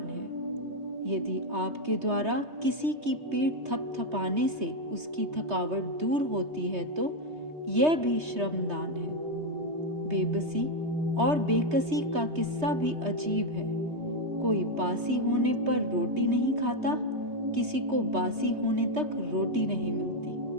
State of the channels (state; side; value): late; left; 3.2 ms